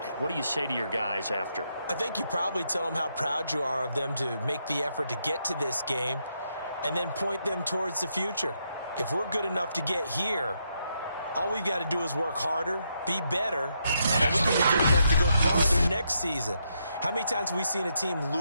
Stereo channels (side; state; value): both; inverted; correlation -0.79